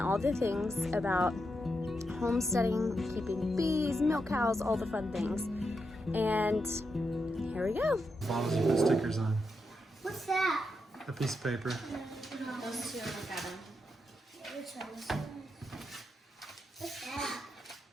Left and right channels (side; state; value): both; normal; correlation 0.85